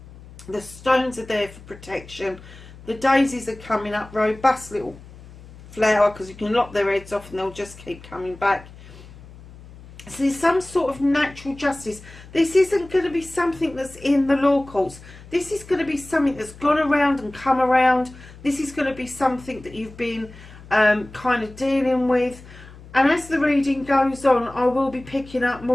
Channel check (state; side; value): noise; left; hum, 19 dB below the sound